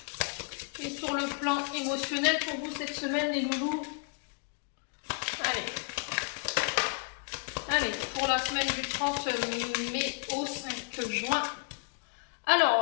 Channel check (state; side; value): quieter; right; 38.6 dB